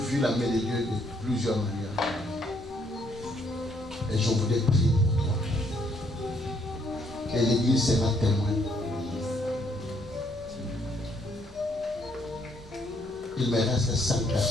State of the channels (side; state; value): both; normal; correlation 0.70